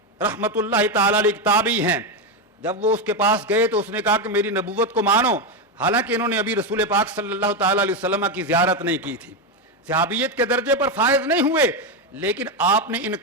رحمت اللہ تعالی علیہ تابعی ہیں، جب وہ اس کے پاس گئے تو اس نے کہا کہ میری نبوت کو مانو، حالانکہ انہوں نے ابھی رسول پاک صلی اللہ تعالی علیہ وسلم کی زیارت نہیں کی تھی، صحابیت کے درجے پر فائز نہیں ہوئے، لیکن آپ نے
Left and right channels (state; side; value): normal; both; correlation 0.10